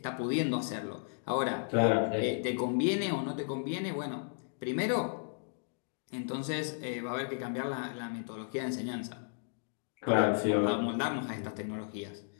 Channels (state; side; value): silent; right; digital silence